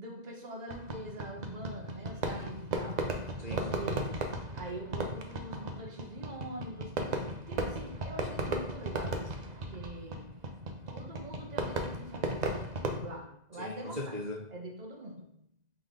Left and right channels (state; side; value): late; left; 2.0 ms